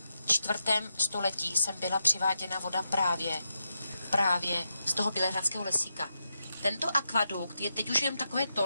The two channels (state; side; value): inverted; both; correlation -0.85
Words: 4. století, jsem byla přiváděna voda právě z toho Bělehradského lesíka. Tento akvadukt je teď už jen takové